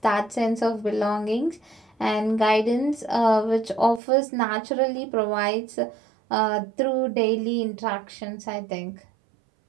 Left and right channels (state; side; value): drops out; left; at 4.0 s